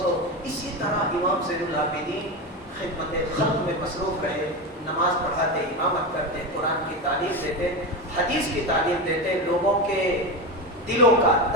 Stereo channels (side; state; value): both; normal; correlation 0.19